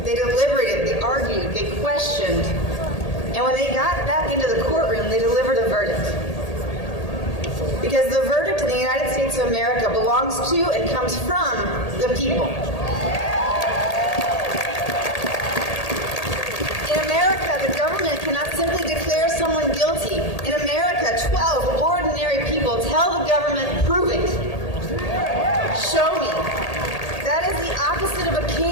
They deliberated, they argued, they questioned. And when they got back into the courtroom, they delivered a verdict. Because the verdict in the United States of America belongs to and comes from the people. In America, the government cannot simply declare someone guilty. In America, 12 ordinary people tell the government, prove it. Show me. That is the opposite of a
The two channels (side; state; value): right; late; 1.8 ms